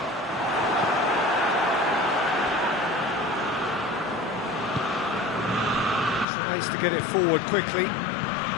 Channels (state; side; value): drops out; right; at 6.2 s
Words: Tries to get it forward quickly.